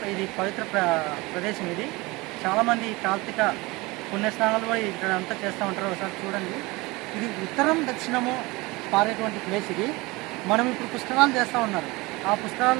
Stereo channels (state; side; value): quieter; left; 23.1 dB